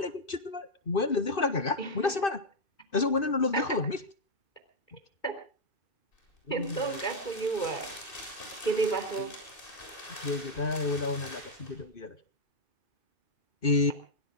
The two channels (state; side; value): late; right; 2.6 ms